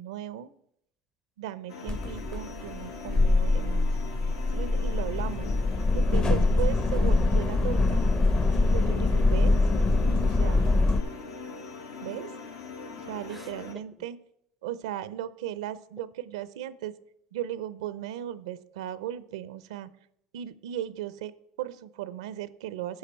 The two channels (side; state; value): both; normal; correlation 0.80